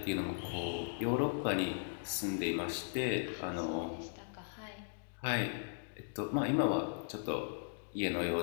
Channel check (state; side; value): silent; right; digital silence